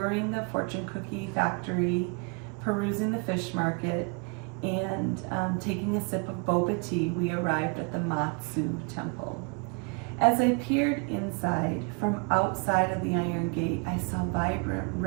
the fortune cookie factory, perusing the fish market, and taking a sip of boba tea, we arrived at the Matsu Temple. As I peered inside, from outside of the Iron Gate, I saw vibrant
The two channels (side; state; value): left; quieter; 34.3 dB